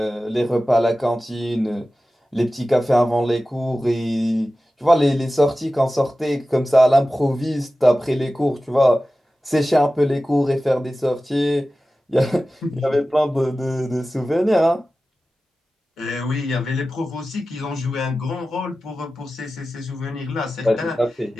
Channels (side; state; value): both; normal; correlation 0.95